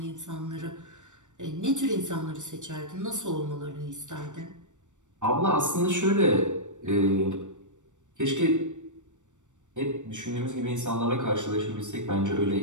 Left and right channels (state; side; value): late; left; 0.85 ms